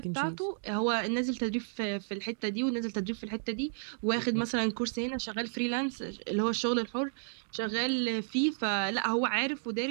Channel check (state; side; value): silent; left; digital silence